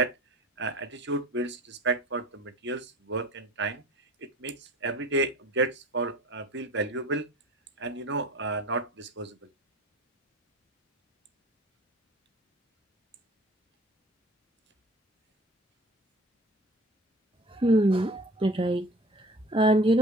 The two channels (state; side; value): normal; both; correlation 0.42